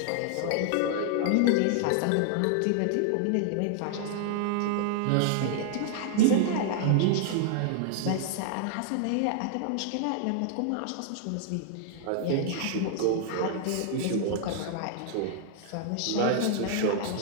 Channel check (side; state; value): both; different; correlation -0.01